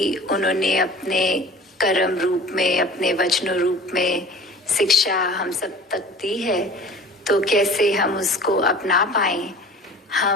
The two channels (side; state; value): both; normal; correlation 0.43